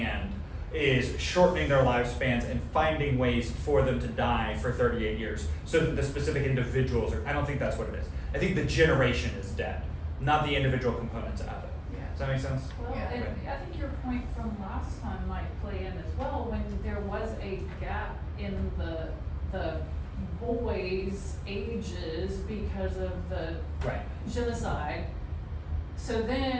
is shortening their lifespans and finding ways for them to die for 38 years so that the specific individuals are, I don't think that's what it is. I think the generation is dead, not the individual components of it. Yeah. Does that make sense? Well, Yeah. and I think your point from last time might play in as well, when there was a gap in the boys' ages because of the Right. genocide. So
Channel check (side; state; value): both; identical; correlation 1.00